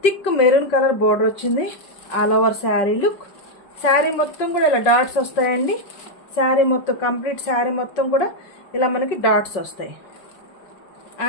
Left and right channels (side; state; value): right; late; 5.4 ms